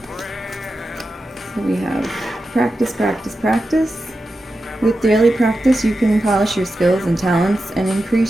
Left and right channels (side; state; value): both; normal; correlation 0.91